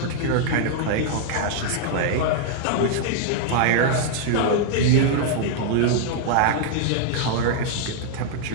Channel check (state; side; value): different; both; correlation -0.01